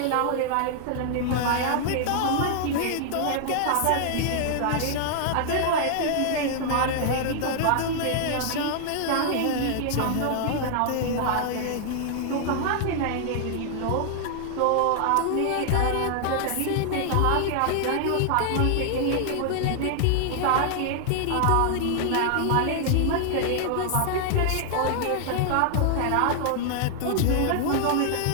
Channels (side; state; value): both; different; correlation 0.00